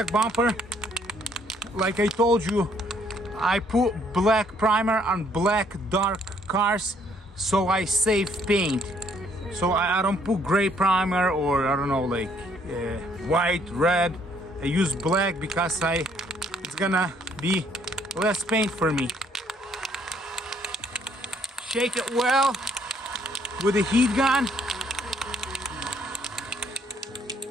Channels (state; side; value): normal; both; correlation 0.66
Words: bumper. Like I told you, I put black primer on black dark cars so I save paint. So I don't put gray primer or I don't know, like white, red. I use black because it's gonna be less paint for me. Shake it well with a heat gun.